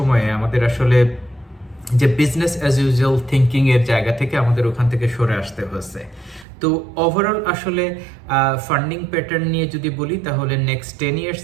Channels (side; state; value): left; drops out; at 6.5 s